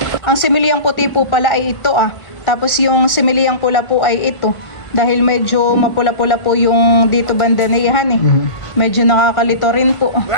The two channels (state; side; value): late; right; 1.4 ms